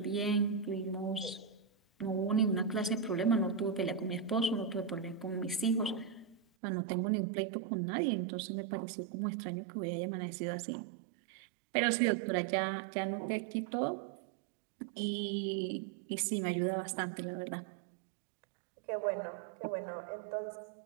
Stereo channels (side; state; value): left; drops out; at 6.4 s